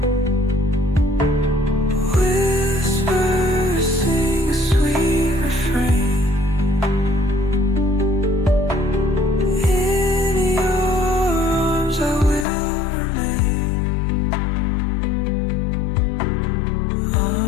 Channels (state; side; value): drops out; right; at 12.5 s